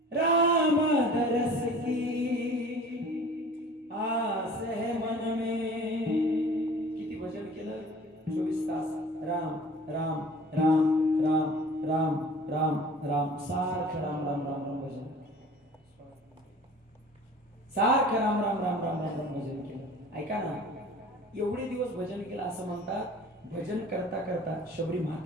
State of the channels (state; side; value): normal; both; correlation 0.45